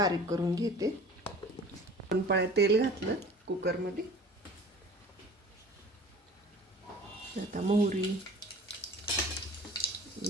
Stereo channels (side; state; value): both; normal; correlation 0.43